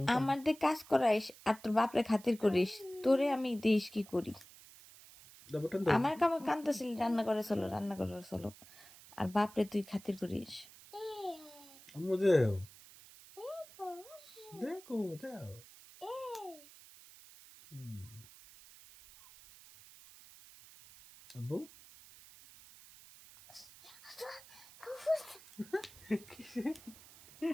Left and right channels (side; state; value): right; noise; hiss, 20 dB below the sound